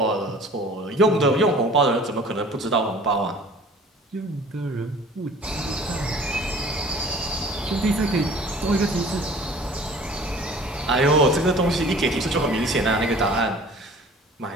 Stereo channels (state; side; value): normal; both; correlation 0.48